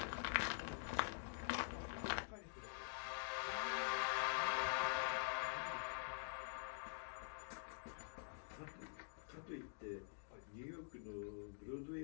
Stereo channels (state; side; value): silent; right; digital silence